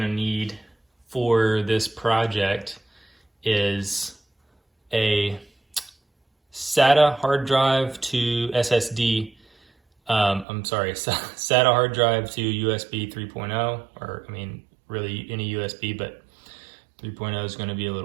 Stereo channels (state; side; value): drops out; left; at 10.5 s